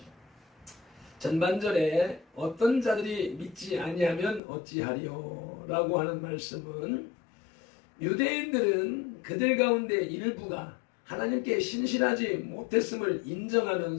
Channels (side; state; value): right; drops out; at 4.4 s